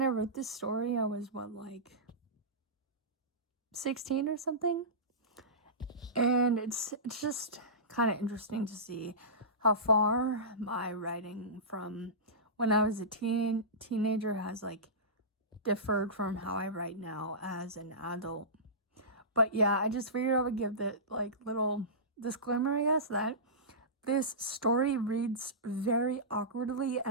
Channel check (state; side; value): normal; both; correlation -0.20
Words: I wrote this story, I was 16 or something, and it's just kind of interesting to see how far my writing from when I was a teenager has differed from how I write now as an adult. But yeah, I just figured I would give the little disclaimer, I guess, that this story reads very awkwardly